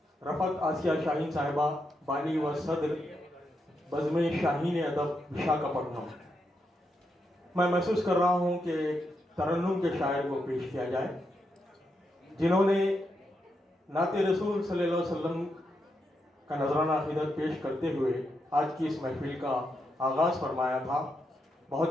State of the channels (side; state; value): both; normal; correlation 0.83